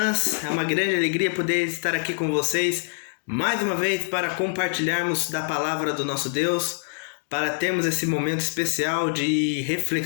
É uma grande alegria poder estar aqui com vocês mais uma vez para compartilharmos da palavra do nosso Deus, para termos esse momento especial de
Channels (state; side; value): silent; right; digital silence